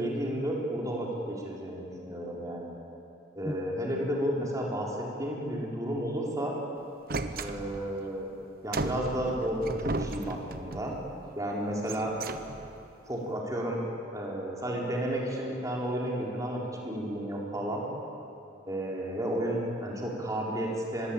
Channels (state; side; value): normal; both; correlation 0.57